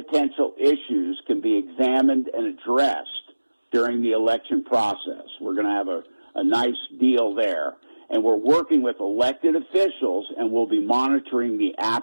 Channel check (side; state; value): both; inverted; correlation -1.00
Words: issues can be examined and addressed during the election process. We're going to have a nice deal there. And we're working with elected officials, and we'll be monitoring the